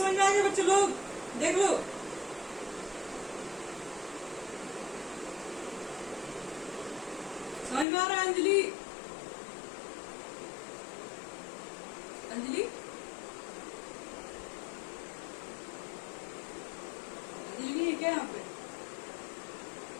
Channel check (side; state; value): right; drops out; at 7.9 s